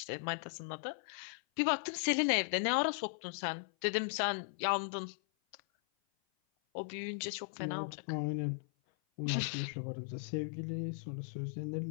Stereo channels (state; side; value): silent; right; 53 dB below the other